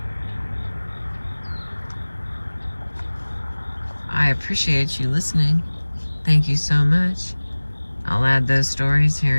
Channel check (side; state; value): both; inverted; correlation -1.00